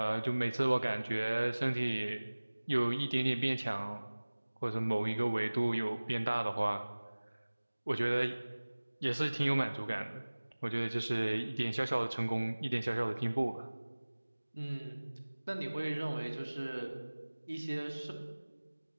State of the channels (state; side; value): inverted; both; correlation -1.00